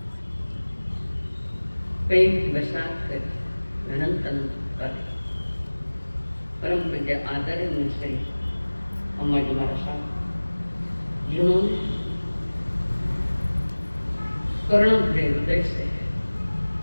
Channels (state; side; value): inverted; both; correlation -1.00